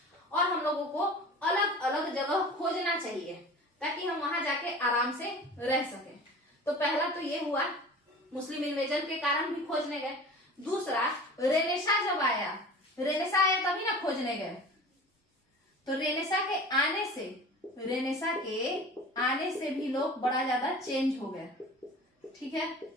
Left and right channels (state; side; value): normal; both; correlation 0.39